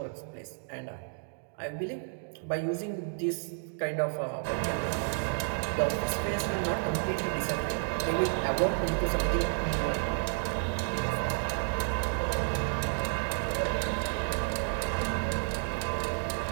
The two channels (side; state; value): left; silent; digital silence